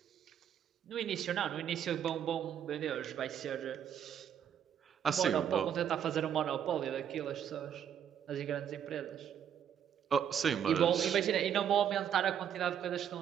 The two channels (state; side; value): quieter; left; 9.0 dB